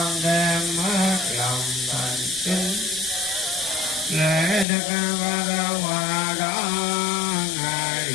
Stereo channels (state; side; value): drops out; right; at 4.7 s